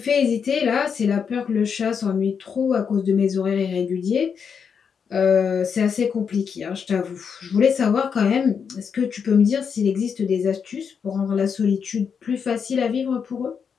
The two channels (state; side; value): quieter; right; 6.6 dB